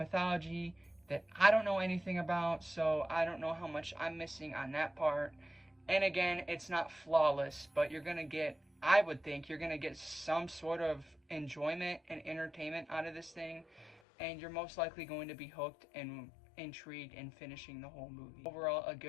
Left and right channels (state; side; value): drops out; right; at 14.0 s